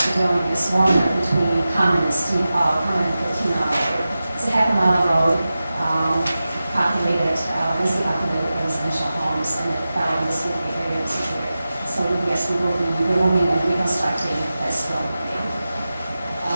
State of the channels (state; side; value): inverted; both; correlation -0.94